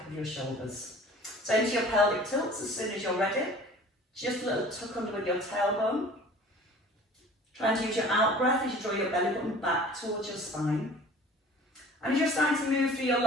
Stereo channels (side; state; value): both; normal; correlation 0.47